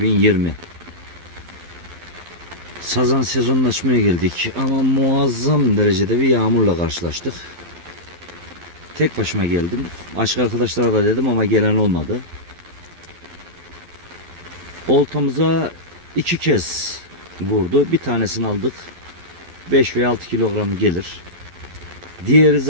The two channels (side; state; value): left; late; 12 ms